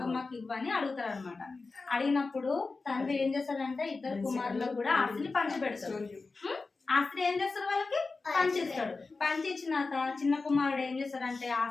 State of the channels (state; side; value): quieter; right; 3.9 dB